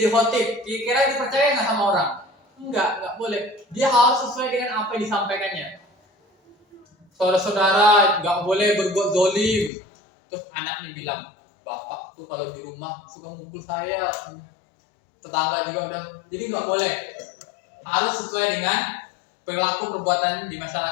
khotib, kira-kira dipercaya nggak sama orang? Enggak boleh. Dia harus sesuai dengan apa yang disampaikannya. Saudara-saudara nggak boleh berbuat zolim. Terus anaknya bilang, bapak tuh kalau di rumah suka mukul saya. Tetangga juga udah, jadi nggak boleh. Harus sesuai dengan perilaku perbuatan di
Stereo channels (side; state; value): right; drops out; at 9.7 s